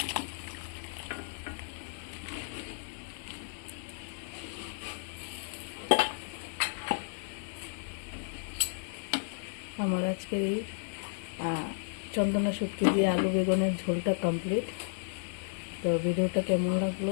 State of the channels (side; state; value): right; silent; 56 dB below the other